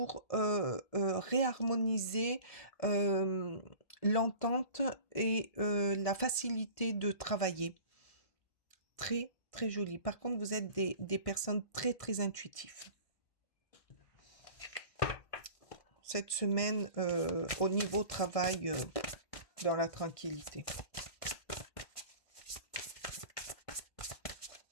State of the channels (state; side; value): late; right; 1.6 ms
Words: réharmoniser l'entente et la facilité de travailler. Très très joli. Par contre, vous êtes des personnes très très intuitives. Cette semaine, au niveau travail, dans la tranquillité.